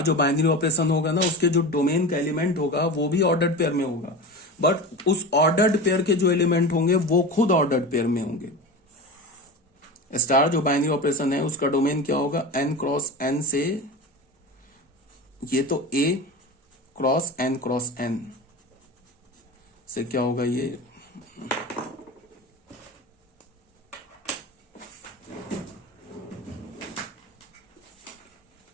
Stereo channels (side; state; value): both; normal; correlation 0.28